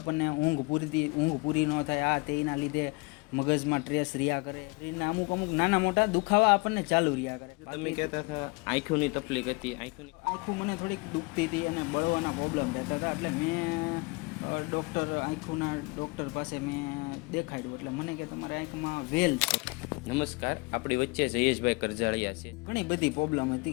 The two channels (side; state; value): right; quieter; 27.7 dB